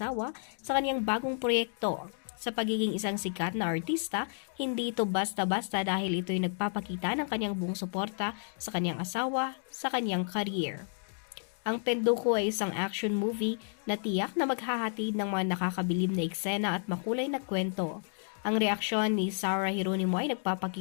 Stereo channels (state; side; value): silent; right; digital silence